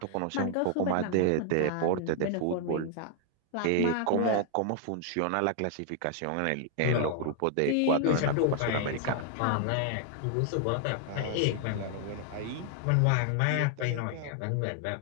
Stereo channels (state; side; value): different; both; correlation 0.00